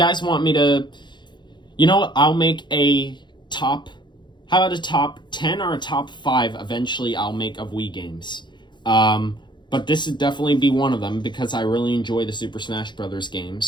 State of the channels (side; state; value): right; late; 0.22 ms